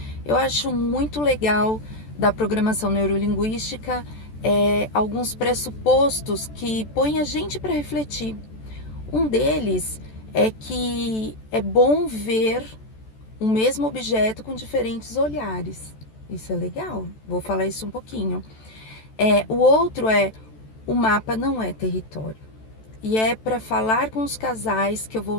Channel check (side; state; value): right; late; 14 ms